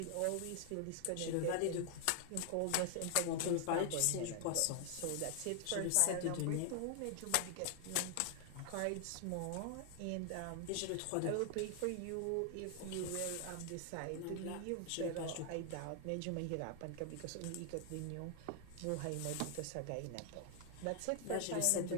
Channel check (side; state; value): both; different; correlation 0.00